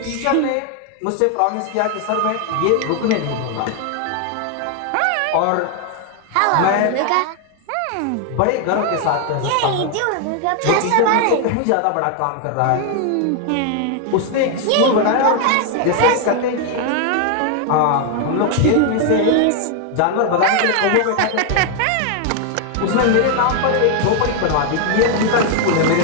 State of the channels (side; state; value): both; different; correlation 0.00